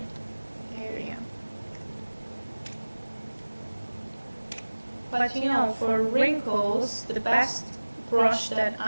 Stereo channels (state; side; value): inverted; both; correlation -1.00